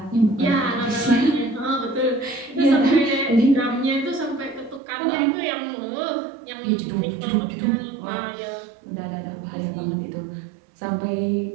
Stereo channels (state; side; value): drops out; left; at 4.8 s